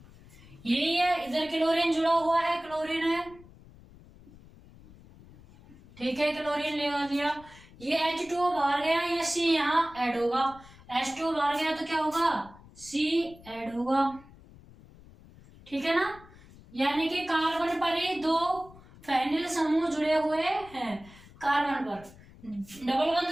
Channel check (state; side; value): noise; left; rumble, 22 dB below the sound